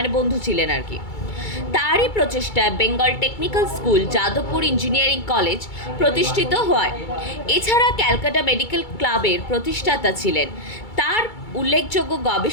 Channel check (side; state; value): right; late; 2.3 ms